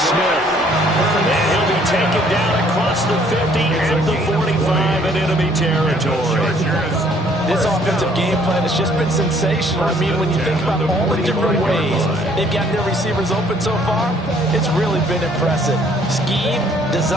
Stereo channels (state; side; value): normal; both; correlation 0.61